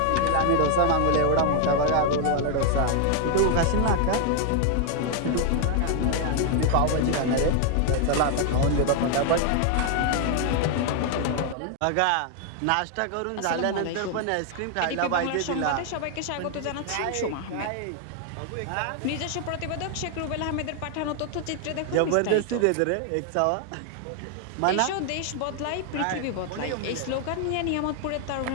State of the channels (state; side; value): different; both; correlation 0.00